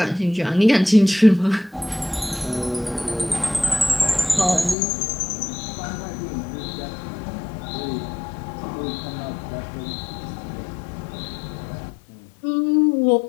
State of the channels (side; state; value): right; drops out; at 4.8 s